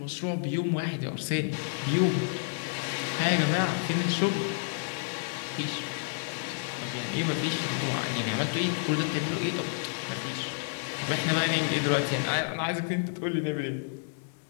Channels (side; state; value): right; silent; 58 dB below the other